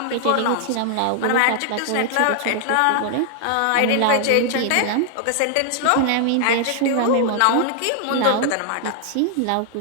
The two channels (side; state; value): both; different; correlation 0.00